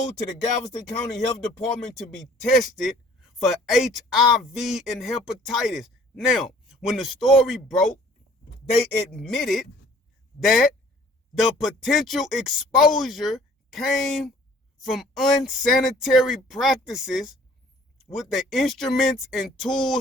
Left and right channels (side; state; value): both; normal; correlation 0.54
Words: to the Galveston County Health Department to be tested for HIV and hepatitis. Now, when the story broke, they admitted that the potential exposure came from unsanitary practices with the instruments and